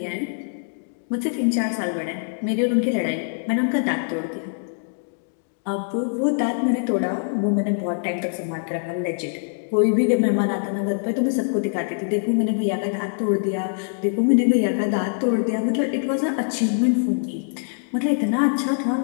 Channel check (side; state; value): right; silent; digital silence